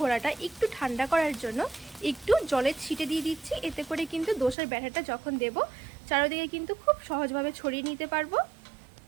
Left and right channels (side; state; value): left; drops out; at 4.5 s